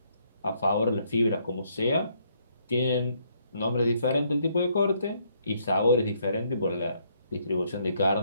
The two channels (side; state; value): both; inverted; correlation -0.71